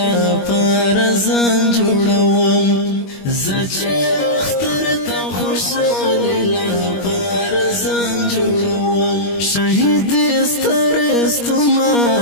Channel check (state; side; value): late; right; 21 ms